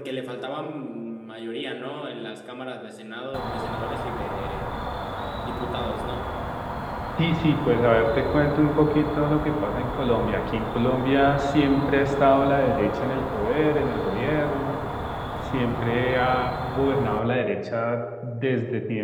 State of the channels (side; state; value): both; identical; correlation 1.00